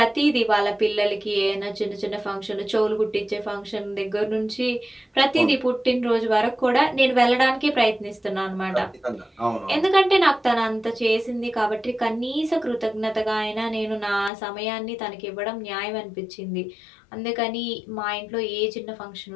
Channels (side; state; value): right; drops out; at 14.3 s